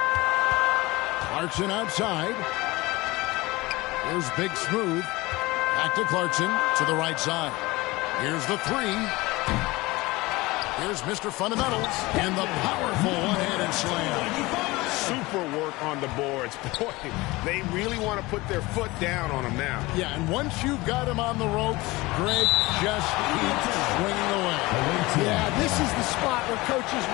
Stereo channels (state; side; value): quieter; right; 21.3 dB